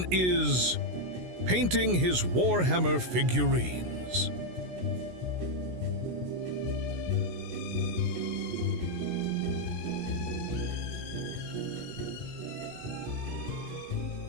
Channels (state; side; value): late; left; 16 ms